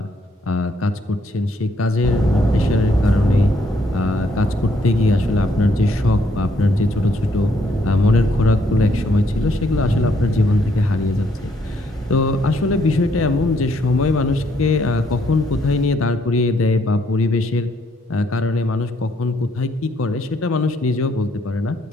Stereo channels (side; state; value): both; normal; correlation 0.70